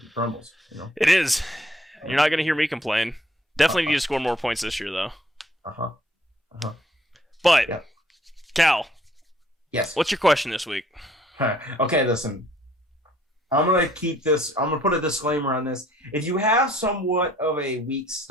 crumbles. It is. You're not gonna hear me complain. Definitely need to score more points this year, though. But yeah. Cal, yes. What's your question this week? Okay, listen. I'm going to put a disclaimer on this. If you have somewhat of a weak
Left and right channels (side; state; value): both; normal; correlation 0.62